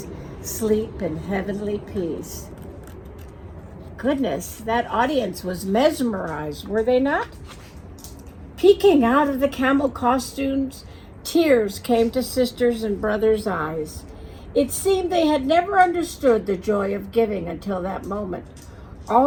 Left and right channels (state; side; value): identical; both; correlation 1.00